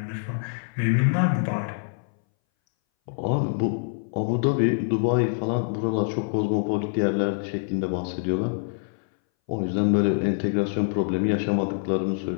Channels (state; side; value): silent; right; 60 dB below the other